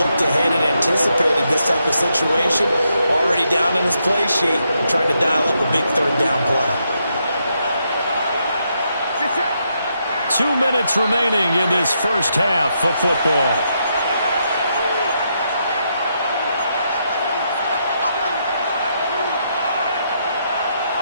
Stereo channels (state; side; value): inverted; both; correlation -0.80